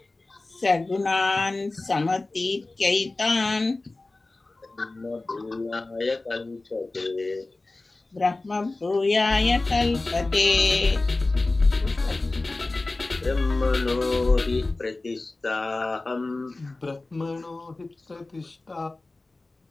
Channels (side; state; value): right; quieter; 3.1 dB